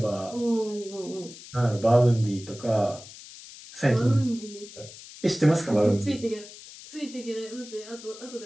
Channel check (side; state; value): left; noise; hiss, 17 dB below the sound